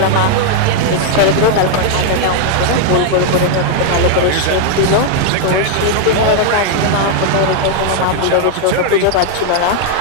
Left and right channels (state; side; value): different; both; correlation 0.00